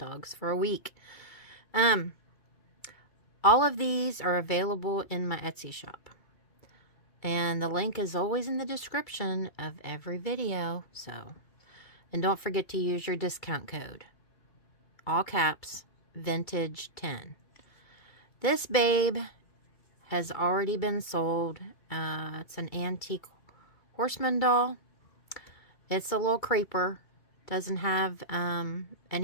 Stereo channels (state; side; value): late; right; 2.3 ms